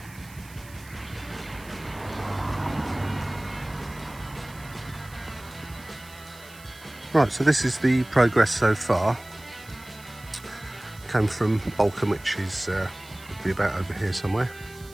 Right, so this is the progress so far. Came from Balcombe, which is would be about over here somewhere.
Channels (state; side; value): noise; right; hiss, 21 dB below the sound